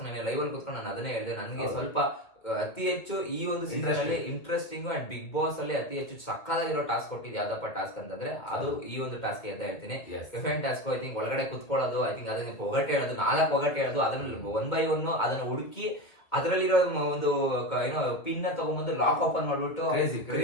ನಾನು ಲೈವ್ ಅಲ್ಲಿ ಕೂತ್ಕೊಂಡು ನಾನು ಅದನ್ನೇ ಹೇಳಿದೆ, ನನಗೆ ಸ್ವಲ್ಪ ಅತಿ ಹೆಚ್ಚು ಈ ಒಂದು ಸೀಸನ್ ಅಲ್ಲಿ ಇಂಟ್ರೆಸ್ಟಿಂಗ್ ಅಂಡ್ ಬಿಗ್ ಬಾಸ್ ಅಲ್ಲಿ ಅತಿ ಹೆಚ್ಚು ಸಕ್ಕದಾಗಿರೋ ಟಾಸ್ಕ್ ಕೊಟ್ಟಿದ್ದು ಯಾವ್ದಪ್ಪ ಟಾಸ್ಕ್ ಅಂತಂದ್ರೆ ಅದು ಈ ಒಂದು ಟಾಸ್ಕ್ ಅಂತ ಹೇಳ್ತೀನಿ. Different task. ಐ ಥಿಂಕ್ ಒಳಗಡೆ ಕುತ್ಕೊಳ್ಳೋದು, ಐ ಥಿಂಕ್ ಅದನ್ನ ಒಗಟೆ ಹೇಳೋದು, 4 ಒಗಟೆ ಹೇಳೋದು, ಅದನ್ನ 1 by 1 ಅದನ್ನ ಹುಡುಕಿ ಅದರಲ್ಲಿರೋ ಒಂದು ಏನೋ ಪಿನ್ ತಗೊಂಡ್ಬಂದು ಲಾಕ್ ಓಪನ್ ಮಾಡ್ಬಿಟ್ಟು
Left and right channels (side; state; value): right; late; 2.5 ms